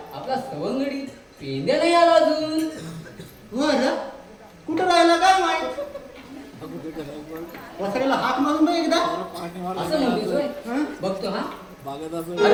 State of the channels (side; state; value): both; identical; correlation 1.00